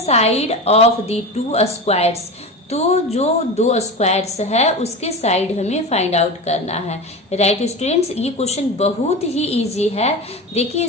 of the two squares, तो जो दो स्क्वायर्स है उसके साइड हमें फाइंड आउट करना है, राइट स्टूडेंट्स? ये क्वेश्चन बहुत ही इजी है। देखिए,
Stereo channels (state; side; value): normal; both; correlation 0.26